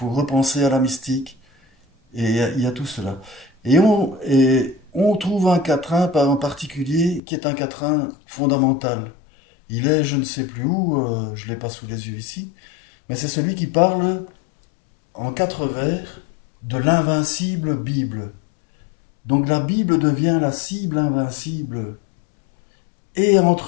repenser à la mystique, et il y a tout cela. Et on trouve un quatrain en particulier qui est un quatrain fondamental. Il est, je ne sais plus où, je ne l'ai pas sous les yeux ici, mais c'est celui qui parle en 4 vers de l'invincible Bible. Donc la Bible devient la cible invincible. Et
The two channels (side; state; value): right; drops out; at 7.2 s